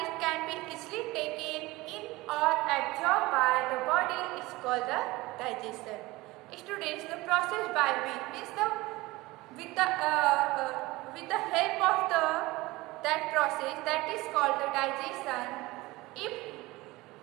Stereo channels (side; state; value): left; quieter; 20.5 dB